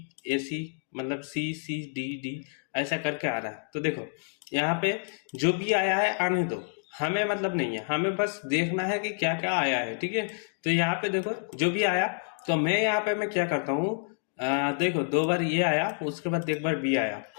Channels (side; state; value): right; silent; 59 dB below the other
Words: ए सी, मतलब सी सी डी डी ऐसा करके आ रहा है। तो देखो यहाँ पे जो भी आया है आने दो, हमें मतलब नहीं है, हमें बस देखना है कि क्या क्या आया है, ठीक है। तो यहाँ पे देखो जो भी आया, तो मैं यहाँ पे मैं क्या करता हूँ, देखो 2 बार ये आया, उसके बाद 1 बार बी आया,